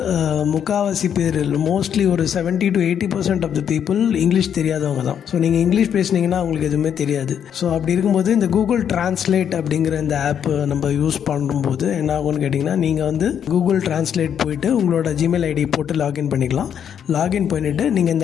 முக்காவாசி பேர் மோஸ்ட்லி ஒரு 70 to 80% of the people English தெரியாதவங்க தான். ஸோ நீங்கள் இங்கிலீஷ் பேசுனீங்கன்னா அவங்களுக்கு எதுவுமே தெரியாது. ஸோ அப்படி இருக்கும்போது இந்த கூகுள் டிரான்ஸ்லேட் அப்படிங்கிற இந்த ஆப் நம்ம யூஸ் பண்ணும்போது என்ன ஆகும்னு கேட்டிங்கன்னா, நீங்கள் வந்து கூகுள் டிரான்ஸ்லேட் போயிட்டு உங்களோட ஜிமெயில் ஐடி போட்டு லாகின் பண்ணிக்கலாம். லாகின் பண்ணிவிட்டு நீங்கள்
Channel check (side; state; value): right; quieter; 8.6 dB